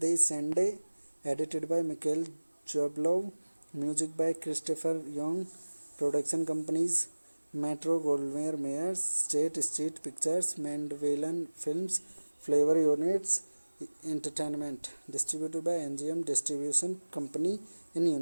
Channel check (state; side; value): inverted; both; correlation -1.00